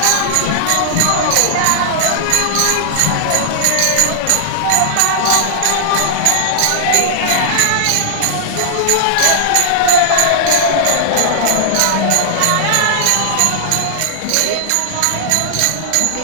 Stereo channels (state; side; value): different; both; correlation -0.01